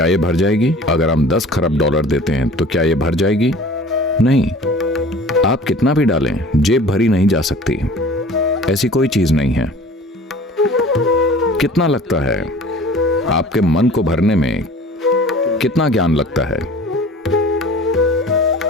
यह भर जाएगी? अगर हम 10 खरब डॉलर देते हैं तो क्या यह भर जाएगी? नहीं। आप कितना भी डालें, जेब भरी नहीं जा सकती। ऐसी कोई चीज नहीं है। कितना लगता है? आपके मन को भरने में कितना ज्ञान लगता है?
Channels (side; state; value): both; normal; correlation 0.44